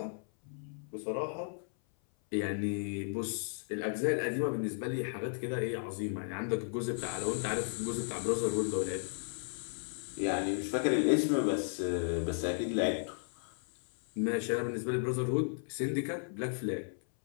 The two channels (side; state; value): right; silent; 55 dB below the other